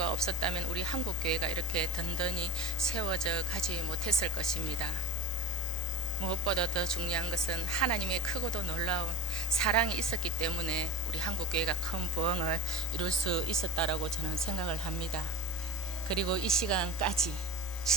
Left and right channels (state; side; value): normal; both; correlation 0.35